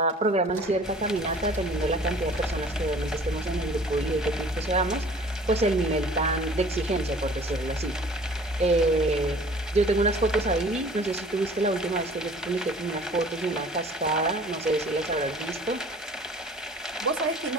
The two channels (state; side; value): normal; both; correlation 0.48